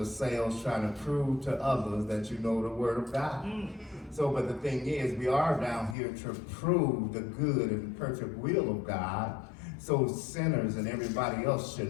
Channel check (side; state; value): right; drops out; at 6.0 s